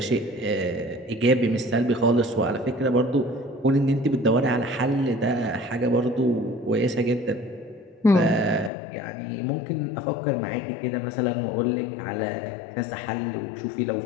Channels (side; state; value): right; drops out; at 8.7 s